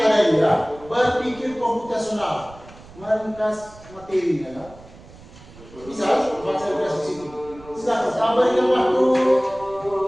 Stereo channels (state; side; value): noise; right; rumble, 21 dB below the sound